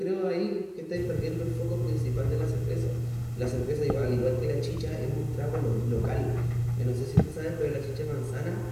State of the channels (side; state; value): both; identical; correlation 1.00